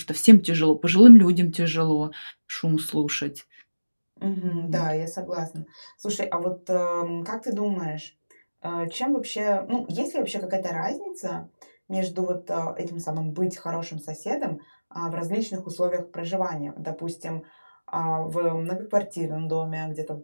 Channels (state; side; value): inverted; both; correlation -1.00